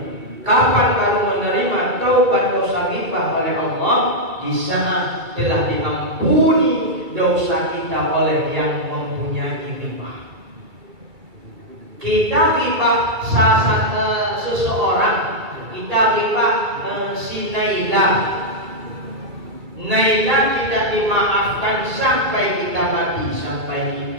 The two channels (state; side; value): late; left; 2.3 ms